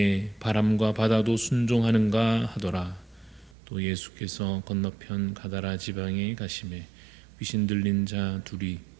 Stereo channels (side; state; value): left; drops out; at 3.6 s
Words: 바람과 바다도 순종하는가 하더라. 또 예수께서 건너편 가다라 지방에 가시매 귀신 들린 자 둘이